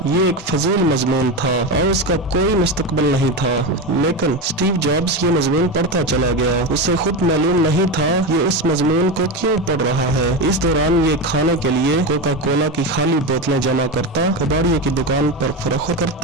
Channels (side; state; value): both; normal; correlation 0.17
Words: ये एक फजील मजमून था और उसका कोई मुस्तकबिल नहीं था, लेकिन स्टीव जॉब्स ये मजमून पढ़ता चला गया। उसे खुद मालूम नहीं था ये इस मजमून को क्यों पढ़ रहा है। इस दौरान ये खाने के लिए कोका कोला की खाली बोतलें जमा करता, कबाड़िए की दुकान पर फरोख्त